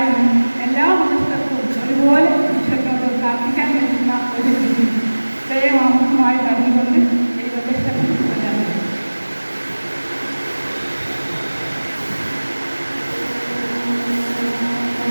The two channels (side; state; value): both; inverted; correlation -1.00